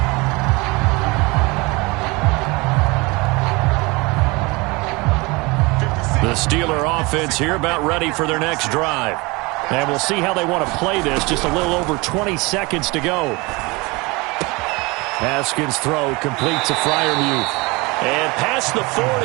The Steeler offense here about ready for their next drive. And we'll see how they want to play this. Just a little over 20 seconds to go. Haskins' throw complete to Freiermuth. And past the 40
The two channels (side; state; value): left; quieter; 25.1 dB